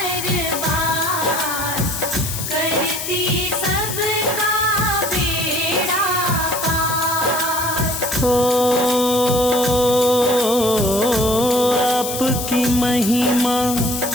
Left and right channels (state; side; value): noise; left; hiss, 5 dB below the sound